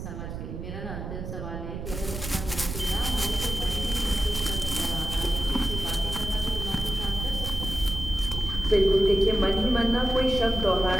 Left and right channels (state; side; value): noise; right; rumble, 7 dB below the sound